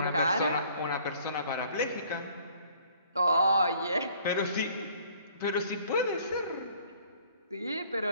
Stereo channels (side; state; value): both; inverted; correlation -0.57